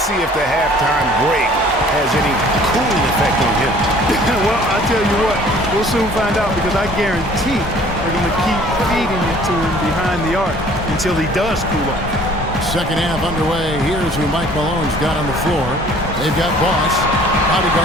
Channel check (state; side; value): normal; both; correlation 0.53